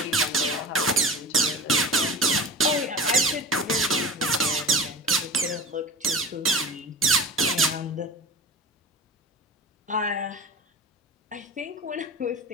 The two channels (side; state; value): both; normal; correlation 0.32